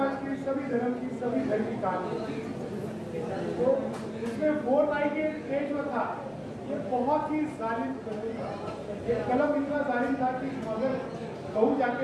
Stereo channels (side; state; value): both; identical; correlation 1.00